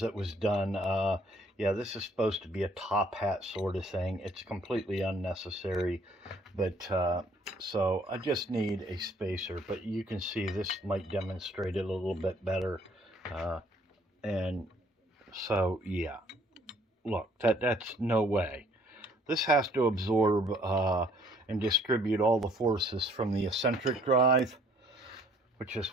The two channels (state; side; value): normal; both; correlation 0.61